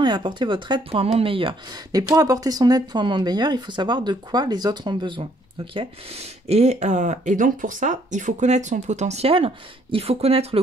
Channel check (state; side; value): normal; both; correlation 0.66